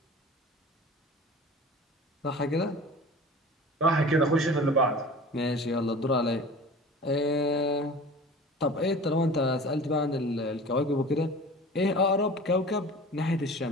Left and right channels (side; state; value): both; normal; correlation 0.39